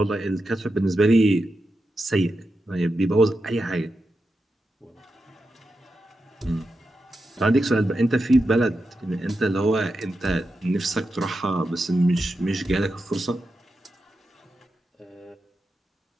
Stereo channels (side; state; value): both; normal; correlation 0.89